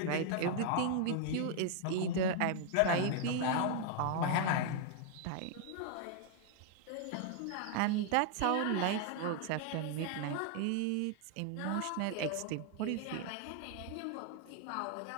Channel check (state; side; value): different; both; correlation 0.00